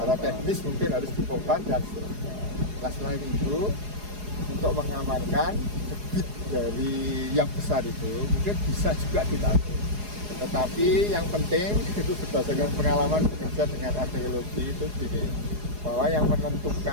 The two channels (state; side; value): late; left; 4.8 ms